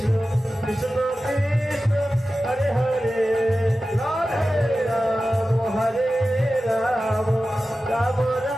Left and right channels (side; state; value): both; normal; correlation 0.94